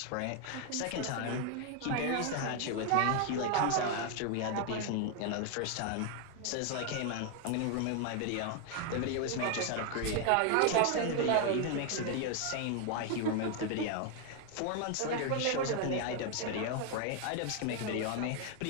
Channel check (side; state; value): both; different; correlation 0.00